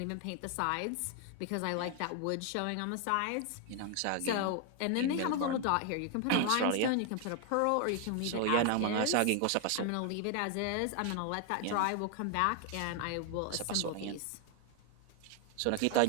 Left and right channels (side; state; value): both; different; correlation 0.00